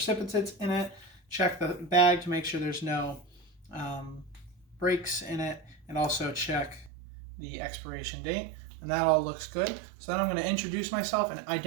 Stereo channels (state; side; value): drops out; left; at 6.9 s